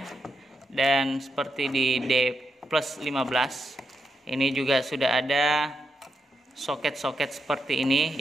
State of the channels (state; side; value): normal; both; correlation 0.83